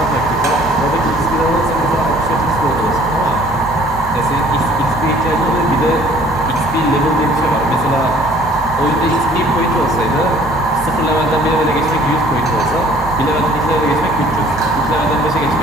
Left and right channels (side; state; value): both; normal; correlation 0.55